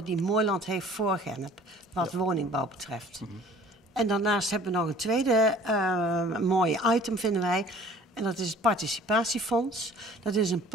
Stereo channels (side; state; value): both; normal; correlation 0.51